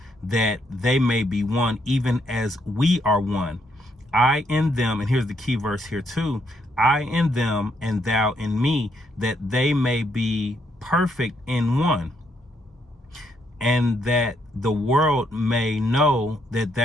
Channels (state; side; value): normal; both; correlation 0.74